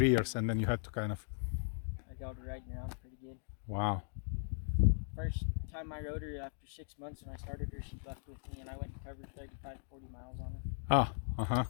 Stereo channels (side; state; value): right; silent; digital silence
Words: years, and then you had to kind of. I got her riding around pretty good. Wow. First time I rode her after 6 months and I started her, she left with me and I went and covered 35, 40 miles on her. Ah, uh-huh.